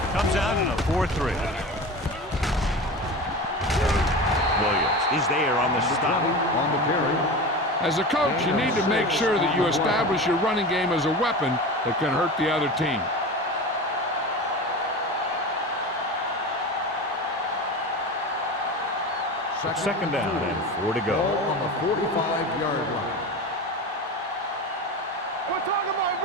comes out in a 4-3. Williams is there on the stop. On the carry. As a coach, you need to make sure that you establish your running game as a weapon that can hurt the other team. Second down and 4 to go. Ball on the 45-yard line. We're talking about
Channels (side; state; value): both; normal; correlation 0.29